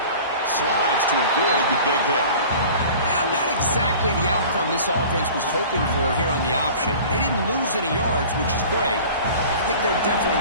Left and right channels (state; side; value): inverted; both; correlation -0.42